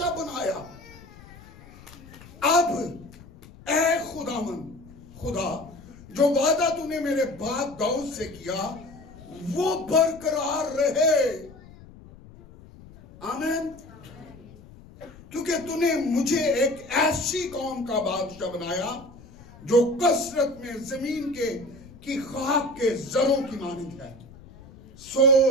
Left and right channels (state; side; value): noise; left; rumble, 20 dB below the sound